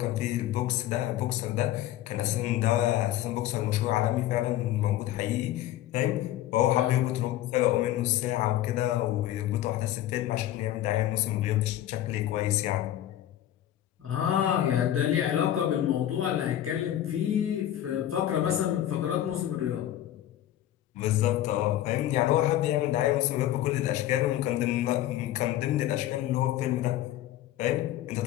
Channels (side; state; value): right; quieter; 12.9 dB